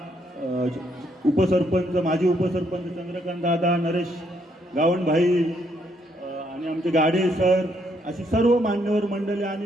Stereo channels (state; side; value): normal; both; correlation 0.72